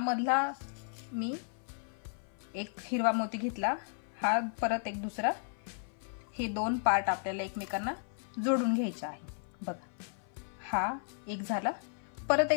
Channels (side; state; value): right; silent; 55 dB below the other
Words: मी एक हिरवा मोती घेतला, हा परत एक दुसरा, हे 2 पार्ट आपल्याला एकमेकांना जोडून घ्यायचे आहे. बघा हा एक झाला. परत